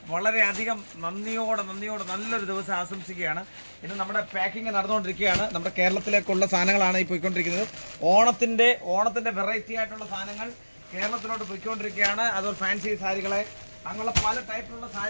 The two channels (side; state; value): both; inverted; correlation -1.00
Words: വളരെയധികം നന്ദിയോടെ നല്ലൊരു ദിവസം ആശംസിക്കുകയാണ്. ഇന്ന് നമ്മുടെ പാക്കിംഗ് നടന്നുകൊണ്ടിരിക്കുകയാണ്. നമ്മുടെ കേരളത്തിലേക്കുള്ള സാധനങ്ങളാണ് ഈ പോയിക്കൊണ്ടിരിക്കുന്നത്. ഓണത്തിൻ്റെ വെറൈറ്റി ആയിട്ടുള്ള സാധനങ്ങൾ കേരളത്തിലോട്ട് പോയിക്കൊണ്ടിരിക്കുകയാണ്. അതുപോലെ ഫാൻസി സാരികളെ അങ്ങനെയുള്ള പല ടൈപ്പിലുള്ള